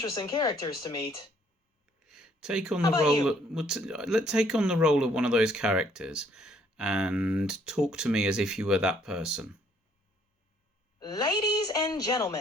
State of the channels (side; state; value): both; normal; correlation 0.65